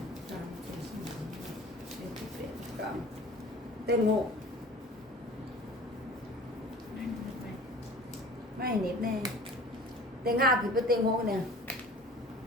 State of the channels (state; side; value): normal; both; correlation 0.43